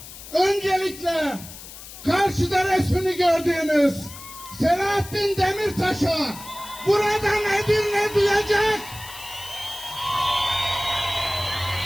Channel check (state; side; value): noise; left; hiss, 15 dB below the sound